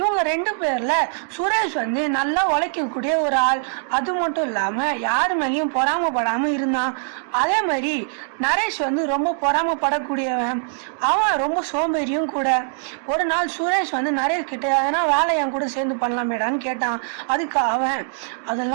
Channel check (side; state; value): left; silent; digital silence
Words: 2 பேர்ல சுரேஷ் வந்து நல்லா உழைக்கக்கூடிய ஒரு ஆள். அது மட்டும் இல்லாம யாரு மேலேயும் பொறாமப்படாம இருந்தான். அதே மாதிரி நரேஷ் வந்து ரொம்ப பொறாமப்படக்கூடியவன். அவன் ரொம்ப சோம்பேறியும் கூட. ஒரு நாள் சுரேஷ் வந்து நரேஷ் கிட்ட எதனா வேலை என் கூட சேர்ந்து பண்ணலாமேடான்னு கேட்டான். அதுக்கு அவன்